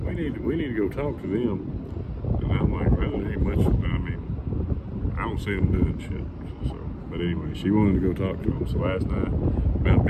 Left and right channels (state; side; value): identical; both; correlation 1.00